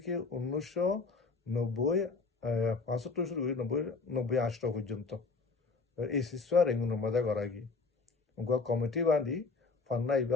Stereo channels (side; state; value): right; quieter; 4.3 dB